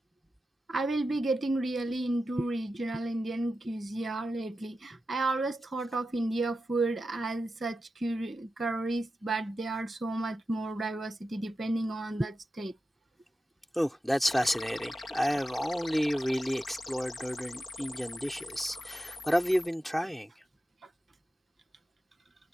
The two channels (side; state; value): both; normal; correlation 0.92